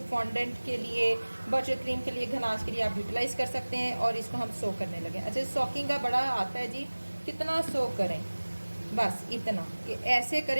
फॉन्डेंट के लिए, बटर क्रीम के लिए, गनाश के लिए आप यूटिलाइज कर सकते हैं। और इसको हम सोक करने लगे। अच्छा, सोकिंग का बड़ा आता है जी, कितना सोक करें, बस इतना कि ऐसे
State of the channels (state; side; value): inverted; both; correlation -1.00